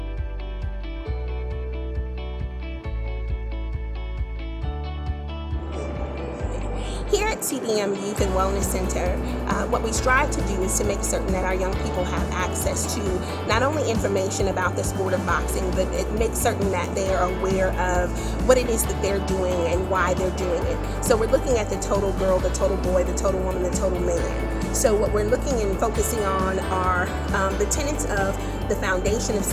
Here at Cdm Youth and Wellness Center, what we strive to do is to make certain that our young people have access to not only information about the sport of boxing, but it makes certain that they are aware of what it is that they're doing and why they're doing it. So we're looking at the total girl, the total boy, the total woman, the total man. So what we're looking and focusing on are the tenets of the Foundation of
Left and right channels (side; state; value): both; identical; correlation 1.00